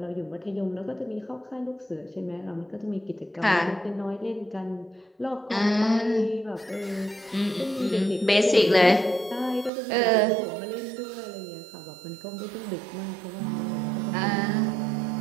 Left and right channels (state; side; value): drops out; left; at 9.7 s